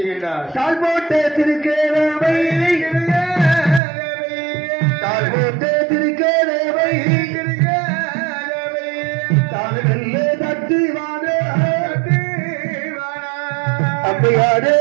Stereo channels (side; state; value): left; drops out; at 3.8 s